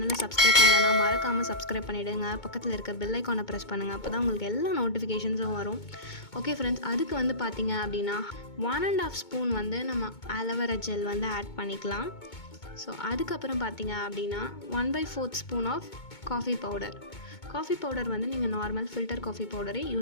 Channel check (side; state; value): right; late; 2.2 ms